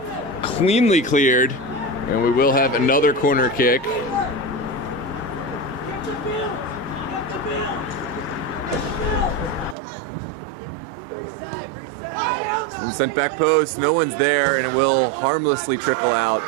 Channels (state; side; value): drops out; left; at 9.8 s